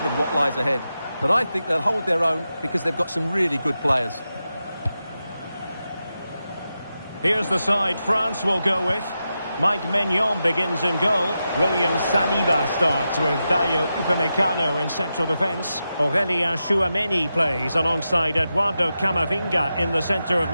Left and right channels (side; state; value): both; inverted; correlation -0.89